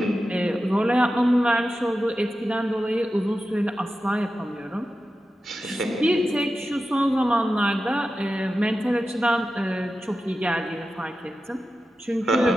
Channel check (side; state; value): both; normal; correlation 0.92